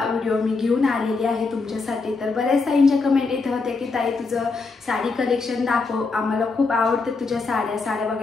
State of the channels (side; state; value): right; quieter; 4.1 dB